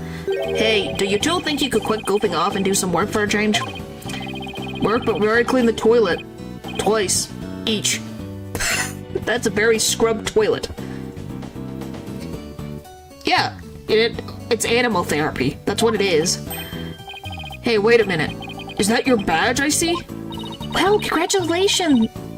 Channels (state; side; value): identical; both; correlation 1.00